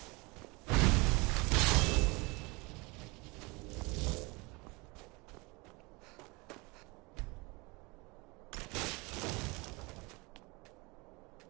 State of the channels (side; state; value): left; quieter; 26.3 dB